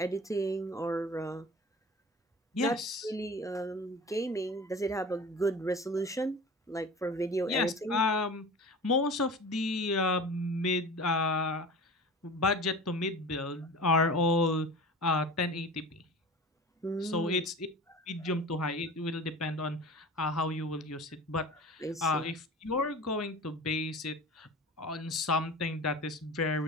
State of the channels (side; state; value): both; normal; correlation 0.36